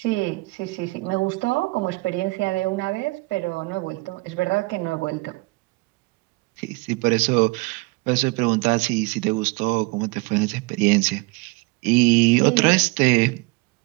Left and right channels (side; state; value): left; quieter; 24.7 dB